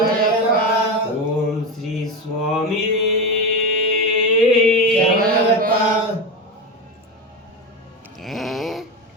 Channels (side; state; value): both; normal; correlation 0.18